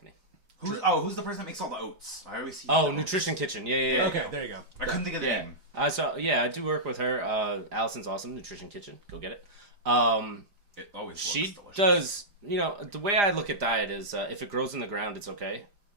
Who's the person that makes all the oats? I always see. Oh, Nutrition Kitchen. Yeah. Okay, there you go. I couldn't think of the Yeah. name. I do work with her. Allison's awesome. Nutrition Kitchen. Go get it. It always She looks delicious. does, the way I look at diet is if it grows in the ground, it's okay.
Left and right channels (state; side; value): late; left; 4.9 ms